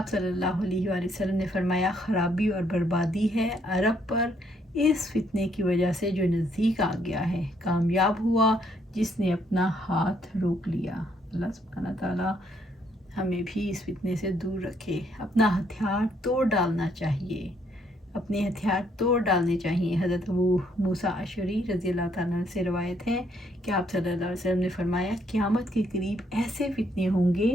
صلی اللہ علیہ وآلہ وسلم نے فرمایا، خرابی اور بربادی ہے عرب پر اس فتنے کی وجہ سے جو نزدیک آ گیا ہے۔ کامیاب ہوا جس نے اپنا ہاتھ روک لیا۔ اللہ سبحانہ تعالیٰ ہمیں بھی اس فتنے سے دور رکھے۔ اپنا ہتھیار توڑ ڈالنا چاہیے، اپنے ہتھیار توڑ ڈالنے چاہیے۔ حضرت ابو موسیٰ اشعری رضی اللہ تعالیٰ عنہ سے روایت ہے کہ آپ صلی اللہ علیہ وسلم نے فرمایا قیامت کے قریب ایسے فتنے ہوں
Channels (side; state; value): both; normal; correlation 0.70